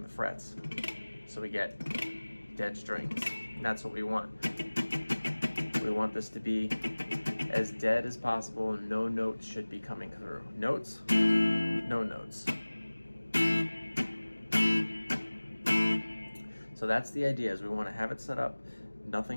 the frets. So we get dead strings, and that's what we want. We want this to be as dead as possible, and no notes should be coming through. Notes, no notes. So that's the idea, is we want to have it set up,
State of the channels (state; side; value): inverted; both; correlation -1.00